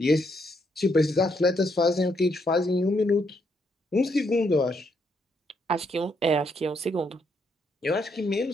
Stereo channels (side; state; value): both; normal; correlation 0.75